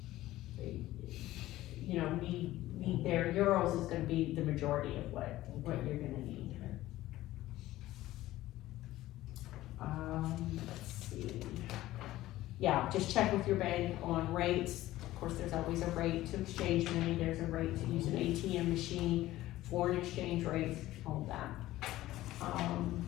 you know, need there. Euros is gonna be the majority of what you're gonna need. Let's see. Yeah, just check with your bank on rates. Of course, there's always a rate to exchange money, there's a rate to use an ATM machine, foreign exchange rates, all of that.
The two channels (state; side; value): quieter; right; 15.8 dB